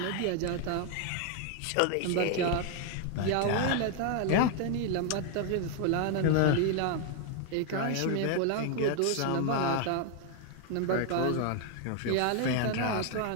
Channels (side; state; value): both; different; correlation 0.00